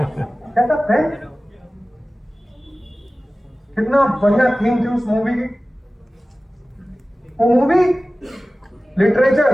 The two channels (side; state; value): both; normal; correlation 0.97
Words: कहता पेन, कितना बढ़िया थीम थी उस मूवी की। वो मूवी लिटरेचर,